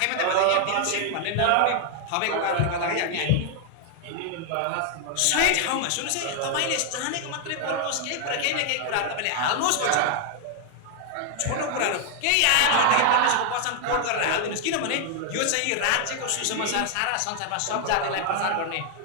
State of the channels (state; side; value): different; both; correlation 0.00